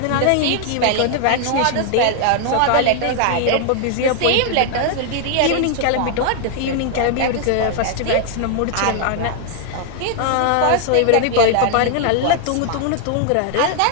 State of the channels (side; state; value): both; different; correlation 0.00